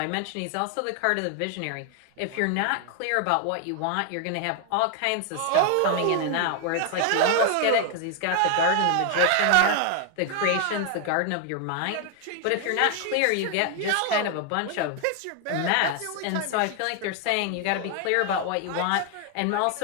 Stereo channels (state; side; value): different; both; correlation 0.00